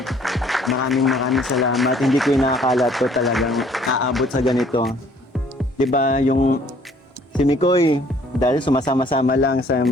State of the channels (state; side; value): normal; both; correlation 0.59